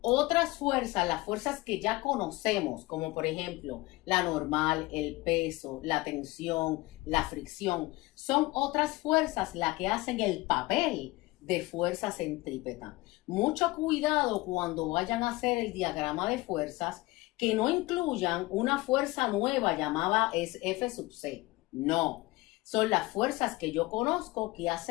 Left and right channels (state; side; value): quieter; right; 20.9 dB